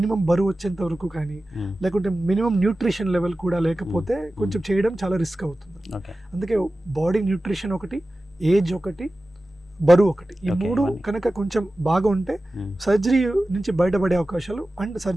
బరువు వచ్చేంత వరకు కానీ, లేకుంటే మినిమం న్యూట్రిషన్ లెవెల్ కూడా లేకపోతే కొంచెం చేయడం చాలా రిస్క్ అవుతుంది. అందుకే బాడీ న్యూట్రిషన్ ఒకటి, ఏజ్ ఒకటి, బరువు ఒకటి, ఈ 3 కనుక కొంచెం బాగా ఉంటే సర్జరీ నుంచి బయటపడే అవకాశాలు అండ్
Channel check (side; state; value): both; normal; correlation 0.95